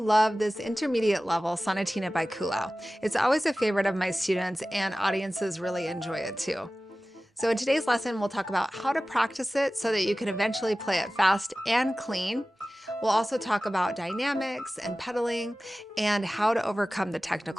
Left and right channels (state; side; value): normal; both; correlation 0.96